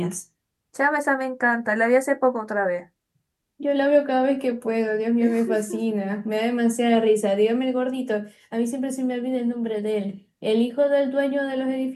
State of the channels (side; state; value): both; identical; correlation 1.00